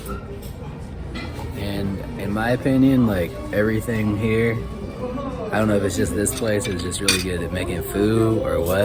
And in my opinion, like everything here, I don't know if it's just this place or it's just really good at making food or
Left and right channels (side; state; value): both; identical; correlation 1.00